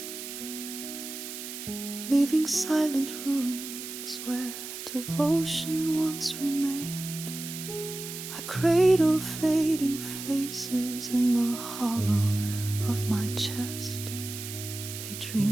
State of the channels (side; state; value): right; noise; hiss, 9 dB below the sound